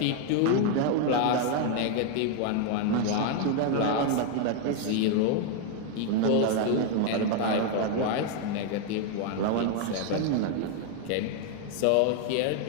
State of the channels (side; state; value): both; different; correlation 0.00